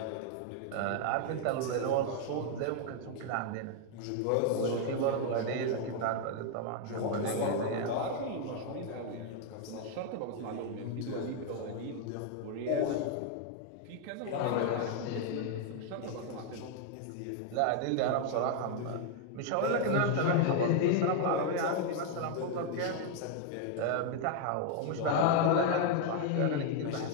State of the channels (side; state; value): both; different; correlation 0.00